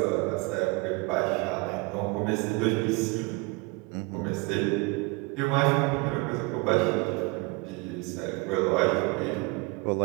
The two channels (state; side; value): quieter; left; 26.8 dB